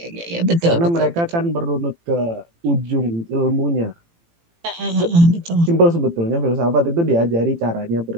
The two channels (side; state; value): left; late; 18 ms